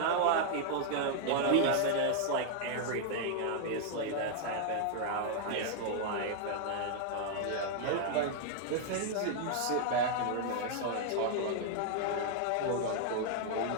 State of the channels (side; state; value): both; different; correlation 0.00